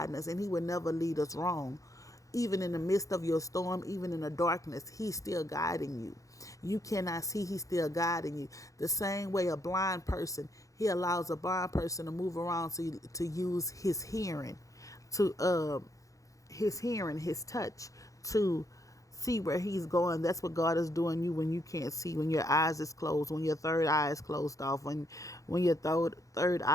us, and he will never lead us wrong. Even in the midst of your storm, even in the darkness, he's still guiding you. You cannot see, he's still guiding you. The same way a blind person, he allows a blind person to move around to use his hearing. to his hearing, his touch, to see where he's going. That's what God is doing you when you can't see, when your eyes is closed, when your third eye is closed off, when your third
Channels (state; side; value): late; right; 0.16 ms